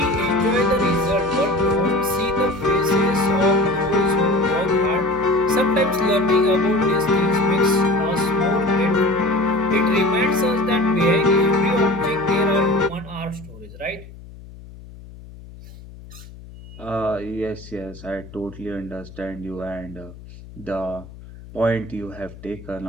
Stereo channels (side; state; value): left; noise; hum, 18 dB below the sound